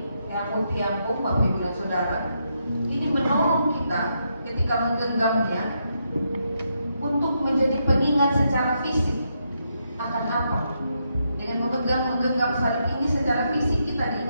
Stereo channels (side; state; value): both; inverted; correlation -0.80